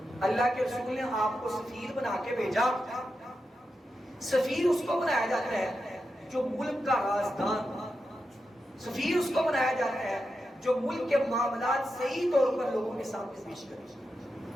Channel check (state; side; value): normal; both; correlation 0.88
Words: اللہ کے رسول نے آپ کو سفیر بنا کے بھیجا. سفیر اس کو بنایا جاتا ہے جو ملک کا رازدان، سفیر اس کو بنایا جاتا ہے جو ملک کے معاملات صحیح طور پر لوگوں کے سامنے پیش کرے.